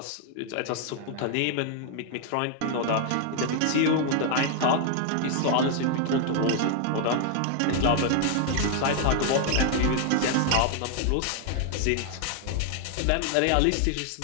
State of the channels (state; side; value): different; both; correlation 0.00